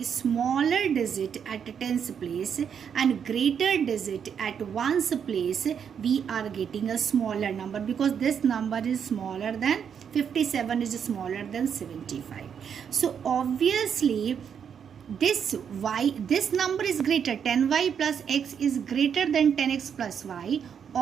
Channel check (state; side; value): quieter; left; 7.6 dB